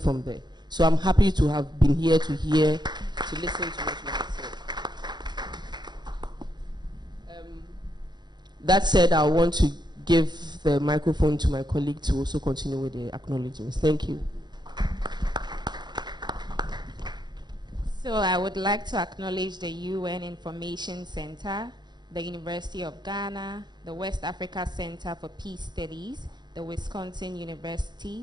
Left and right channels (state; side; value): late; left; 0.21 ms